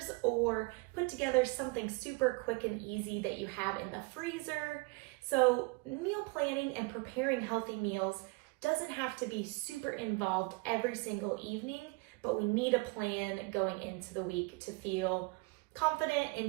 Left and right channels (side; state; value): left; quieter; 27.8 dB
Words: or put together something super quick and easy that you have in the freezer. So meal planning and preparing healthy meals doesn't have to be super involved every single evening, but we need a plan going into the week to feel confident